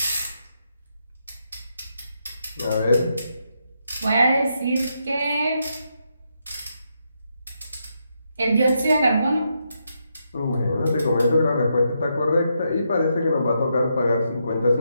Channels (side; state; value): both; inverted; correlation -0.81